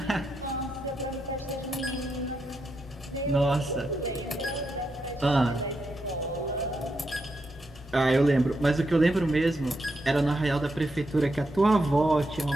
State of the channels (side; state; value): both; normal; correlation 0.83